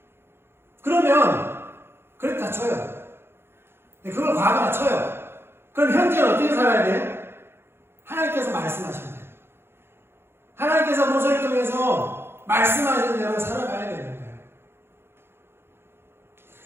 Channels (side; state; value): left; late; 0.11 ms